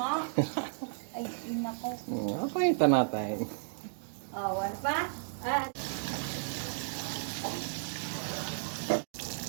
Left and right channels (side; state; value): left; silent; digital silence